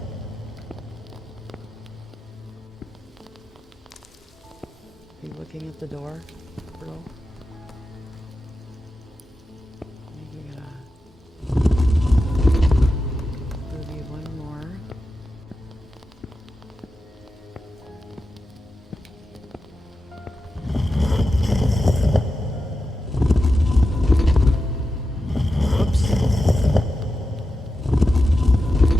Are you looking at the door, girl? Maybe one more.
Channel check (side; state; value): both; normal; correlation 0.91